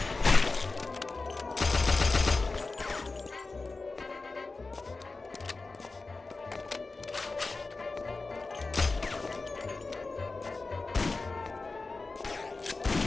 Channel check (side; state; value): right; quieter; 3.7 dB